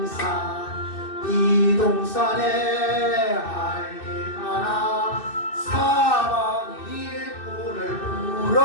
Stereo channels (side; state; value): right; late; 2.6 ms